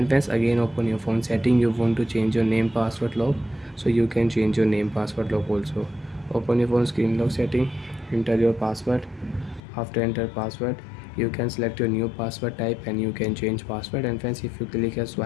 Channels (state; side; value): drops out; right; at 9.6 s